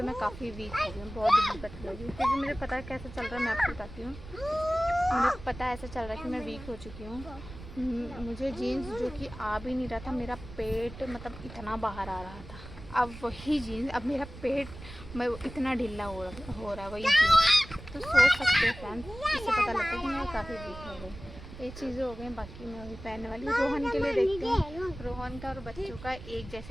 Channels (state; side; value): noise; right; rumble, 14 dB below the sound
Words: मैं काफ़ी वीक हो गई हूँ, बहुत दिक्कत हो गई, क्योंकि मुझे पता है कैसे चल रहा है, मैं आपको बताती हूँ। मुझे पता है ऐसे चल रहा है कि मैं वीक हो चुकी हूँ, मुझे जीन्स जो कि आ भी नहीं रहा था, मेरा पेट मतलब इतना बाहर आ रहा था, अब वही जीन्स, अब मेरा पेट मैं इतना ढीला हो रहा है वही जीन्स, तो सोच सकते हैं फ्रेंड्स, इससे पता लगता है कि मैं काफ़ी वीक हो गई। ये चीज़ें हो गई, बाकी मैं वही पहनने वाली हूँ। रोहन के लिए देखती हूँ, रोहन का और बच्चों का एक